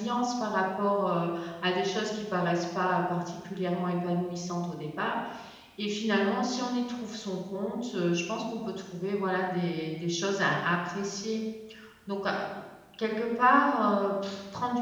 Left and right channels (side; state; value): both; identical; correlation 1.00